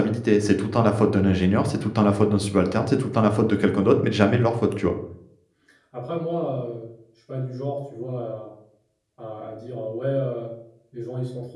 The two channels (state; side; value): identical; both; correlation 1.00